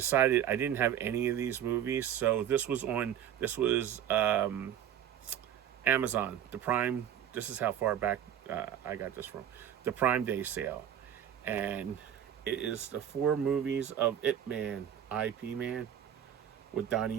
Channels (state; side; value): quieter; left; 9.9 dB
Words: I didn't have any of these movies, so this was Amazon, the Prime. This is how far back I got this from. The Prime Day sale. And it is the 4 movies of Ip Man, IP Man, with